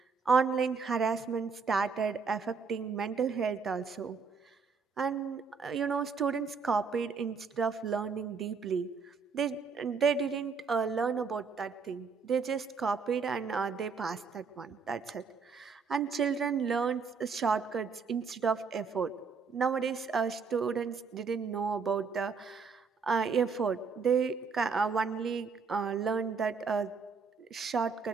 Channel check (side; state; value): left; quieter; 5.3 dB